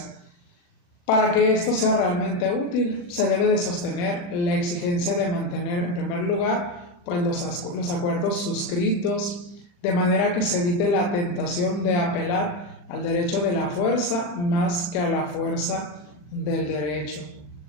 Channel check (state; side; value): late; right; 40 ms